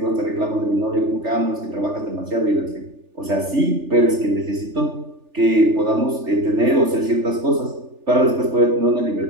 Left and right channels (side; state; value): left; late; 3.4 ms